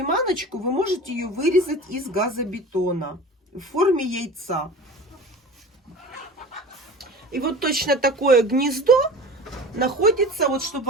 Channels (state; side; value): normal; both; correlation 0.37